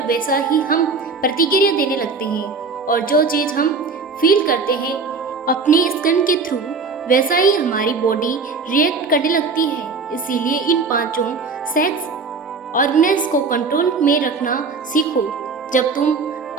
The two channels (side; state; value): left; quieter; 4.5 dB